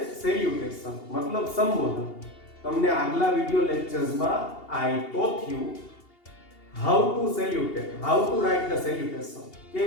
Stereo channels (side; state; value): right; late; 2.8 ms